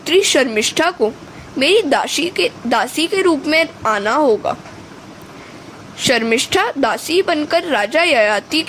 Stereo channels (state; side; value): identical; both; correlation 1.00